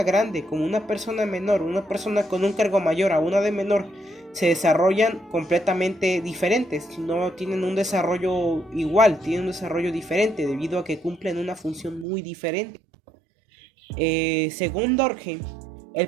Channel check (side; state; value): left; drops out; at 12.1 s